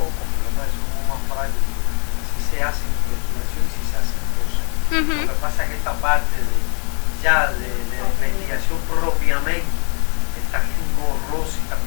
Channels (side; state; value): right; quieter; 38.1 dB